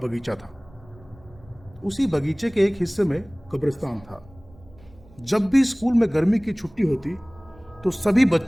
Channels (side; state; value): right; noise; rumble, 24 dB below the sound